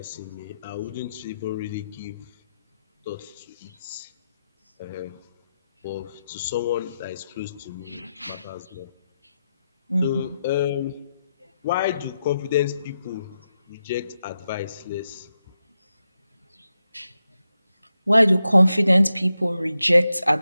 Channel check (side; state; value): both; inverted; correlation -0.87